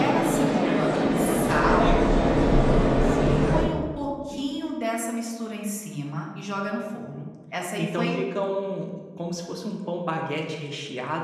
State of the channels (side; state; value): both; identical; correlation 1.00